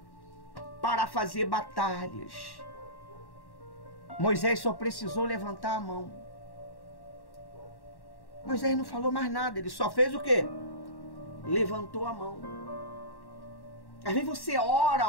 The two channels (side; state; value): right; late; 1.1 ms